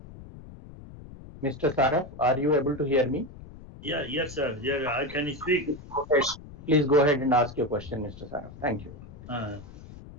Mr. Saraf, are you able to hear me? Yeah, yes, sir. Yeah, I can speak. Please go ahead and ask your question, Mr. Saraf. Thank you.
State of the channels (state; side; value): noise; left; rumble, 16 dB below the sound